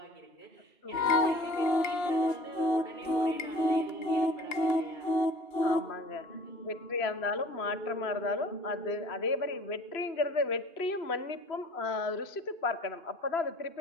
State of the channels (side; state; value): right; late; 2.7 ms